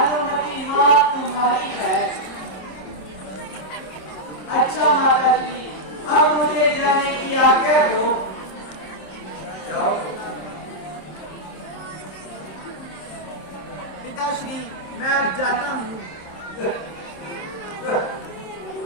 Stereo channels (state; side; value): late; right; 26 ms